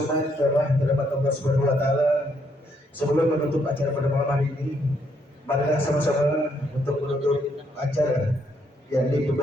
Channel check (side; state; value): both; normal; correlation 0.73